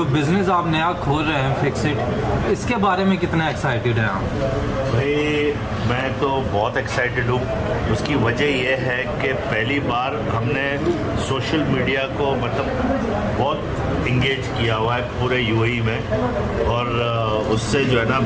बिज़नेस आप नया खोल रहे हैं फिक्सिट, इसके बारे में कितना एक्साइटेड हैं आप? भाई मैं तो बहुत एक्साइटेड हूँ। उसकी वजह यह है कि पहली बार हमने सोशल मीडिया को मतलब बहुत इंगेज किया हुआ है पूरे यूएई में, और उससे जो है ना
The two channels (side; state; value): both; identical; correlation 1.00